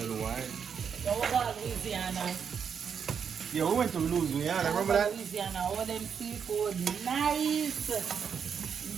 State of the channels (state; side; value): quieter; left; 7.0 dB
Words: wine. So we go to Louisiana. Yeah, we went to Louisiana. Remember that? Louisiana, all them seafood, nice.